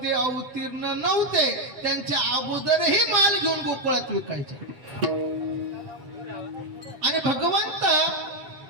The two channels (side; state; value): left; late; 8.0 ms